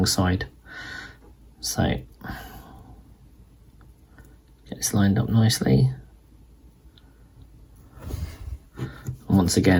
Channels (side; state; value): both; identical; correlation 1.00